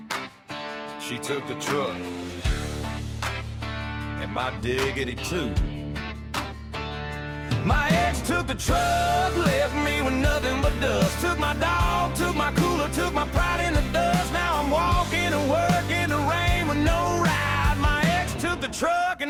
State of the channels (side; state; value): both; identical; correlation 1.00